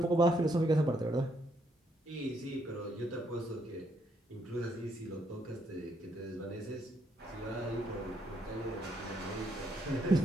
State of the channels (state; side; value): normal; both; correlation 0.73